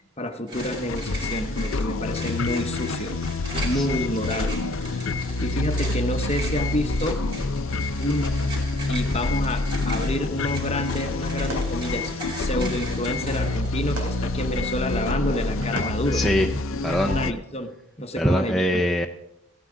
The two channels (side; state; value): both; normal; correlation 0.61